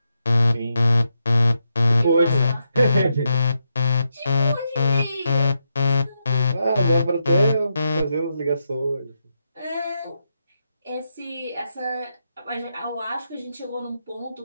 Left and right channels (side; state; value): both; inverted; correlation -0.83